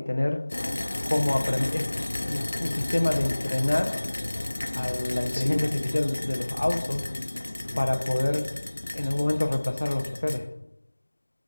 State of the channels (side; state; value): both; inverted; correlation -1.00